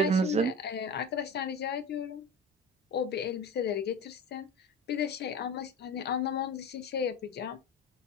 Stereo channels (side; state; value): both; normal; correlation 0.31